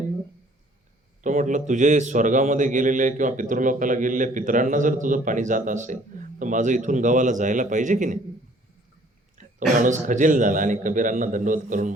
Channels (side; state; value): both; normal; correlation 0.57